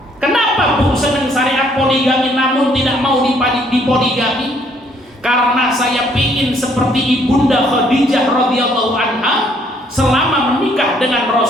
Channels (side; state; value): both; normal; correlation 0.65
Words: Kenapa Bu senang syariat poligami namun tidak mau dipoligami? Karena saya ingin seperti Ibunda Khadijah radhiyallahu anha selama menikah dengan